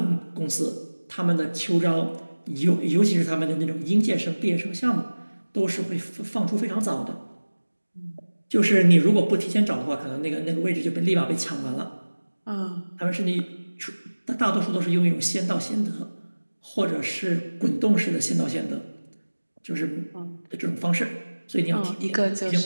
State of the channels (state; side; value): inverted; both; correlation -1.00